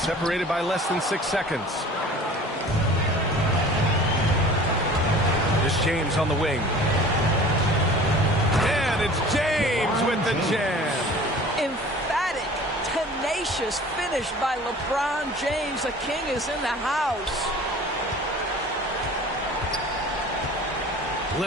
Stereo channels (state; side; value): normal; both; correlation 0.44